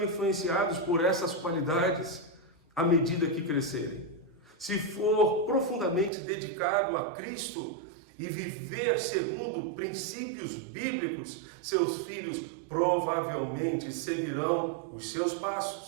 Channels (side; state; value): left; drops out; at 6.1 s